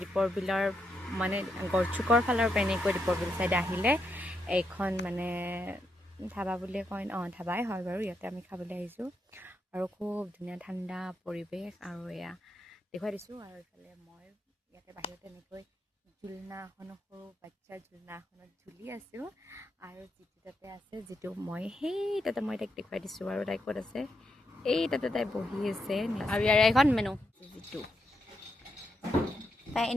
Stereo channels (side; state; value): both; normal; correlation 0.82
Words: দীপৰ বিলৰ মানে গড়চুকৰ ফালৰ পৰা এনেকৈ দীপৰ বিল চাইডে আহিলে এইখন মানে ধাবা বুলিয়ে কয় ধাবাই হয় বাৰু ইয়াতে আমি খাবলৈ আহিছোঁ আৰু খুব ধুনীয়া ঠাণ্ডা পৰিৱেশ আৰু এয়া দেখুৱাই দিছোঁ আৰু এইফালে মই ইয়াতে বাহিৰতে এনেকৈ ঝুলনা এখনো সৰু বাচ্চাৰ ঝুলনা এখনত ঝুলি আছোঁ আৰু যিটো তাতে আছে যিটো মই সেই তাতে মই তাইক দেখুৱাই দিছোঁ আৰু তাই ক'ত আছে এই তাতে তাই বহি আছে আৰু ইয়াৰ এখন মেনু যিটো তাই